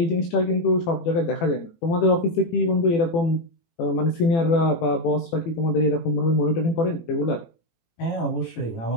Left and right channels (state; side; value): late; right; 18 ms